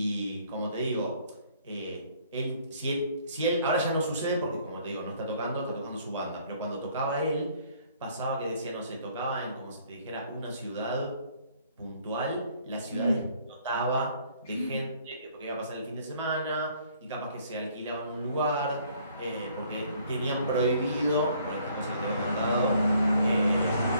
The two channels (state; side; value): inverted; both; correlation -0.62